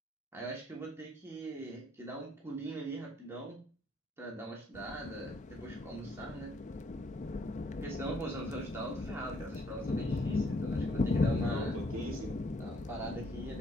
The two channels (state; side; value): normal; both; correlation 0.67